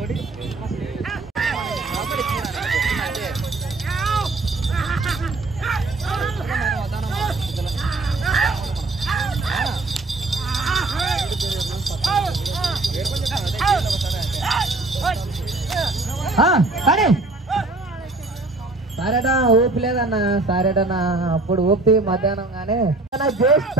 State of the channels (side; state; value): left; quieter; 3.2 dB